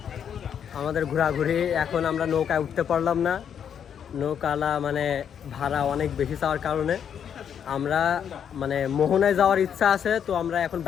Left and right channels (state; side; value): quieter; right; 8.3 dB